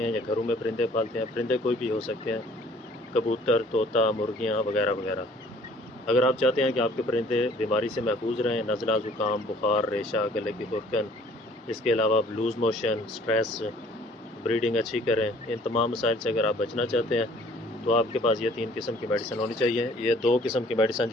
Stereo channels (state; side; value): normal; both; correlation 0.55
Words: हैं या घरों में परिंदे पालते हैं। परिंदे कोई भी हो सकते हैं, कबूतर, तोता, मुर्गियां वगैरह वगैरह। अगर आप चाहते हैं कि आपके परिंदे बीमारी से महफूज रहें, नज़ला, ज़ुकाम, बुखार, रेशा, गले की खुरकन, इसके अलावा लूज़ मोशन, स्ट्रेस, ब्रीडिंग अच्छी करें, इन तमाम मसाइल से अगर आप बचना चाहते हैं तो आपके पास ये 3 किस्म की मेडिसिन होनी चाहिए। ये 2 किस्म की मेडिसिन